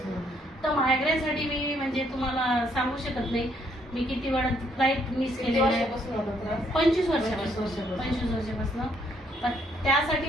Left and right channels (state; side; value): normal; both; correlation 0.69